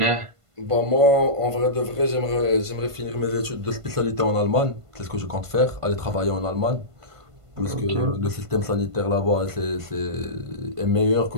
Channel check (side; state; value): left; late; 1.5 ms